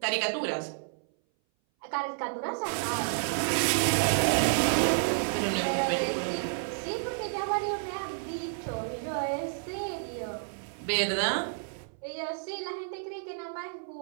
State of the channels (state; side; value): silent; left; 57 dB below the other